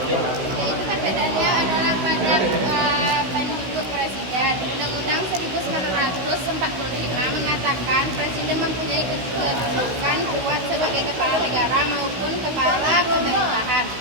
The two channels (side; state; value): left; late; 16 ms